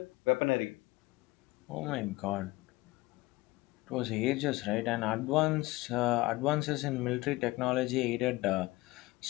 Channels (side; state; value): right; quieter; 20.6 dB